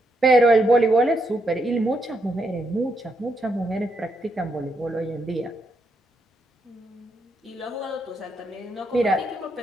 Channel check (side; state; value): both; normal; correlation 0.79